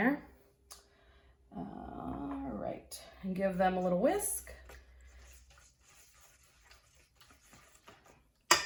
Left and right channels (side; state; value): both; identical; correlation 1.00